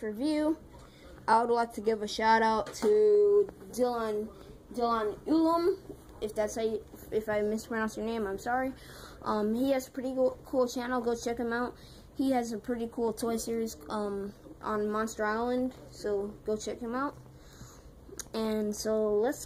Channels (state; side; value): identical; both; correlation 1.00